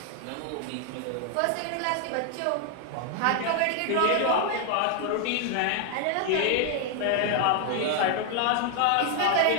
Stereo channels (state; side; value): different; both; correlation 0.00